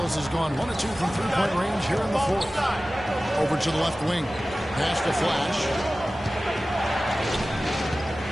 has gone 1 of 2 from three-point range here in the fourth. Over to the left wing. Pass to Flash.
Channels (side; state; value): both; normal; correlation 0.96